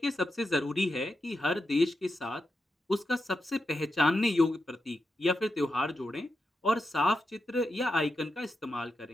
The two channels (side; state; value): both; normal; correlation 0.87